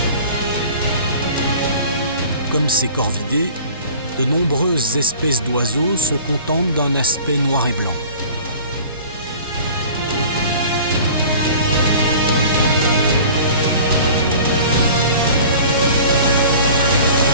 Comme ces corvidés, de nombreuses espèces d'oiseaux se contentent d'un aspect noir et blanc.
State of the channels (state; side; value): inverted; both; correlation -0.45